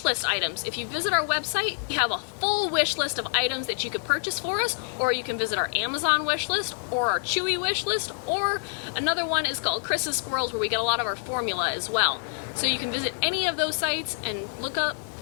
list items. If you visit our website, we have a full wish list of items that you could purchase for us, or you can visit our Amazon wish list or our Chewy wish list, or another one is called Chris's Squirrels, where we get a lot of our formula as well. So you can visit any of those sites and look up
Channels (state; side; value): silent; right; digital silence